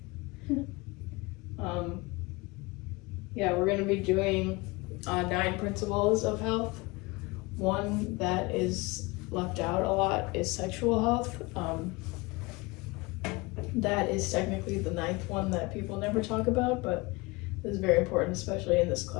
Yeah, we're going to be doing 9 principles of health. One that is left out a lot is sexual health. That is technically the 9th one that people never talk about, but is very important, especially in this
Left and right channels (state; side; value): quieter; right; 24.6 dB